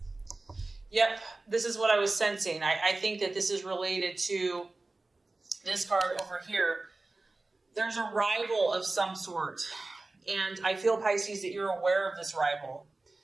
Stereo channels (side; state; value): left; quieter; 3.2 dB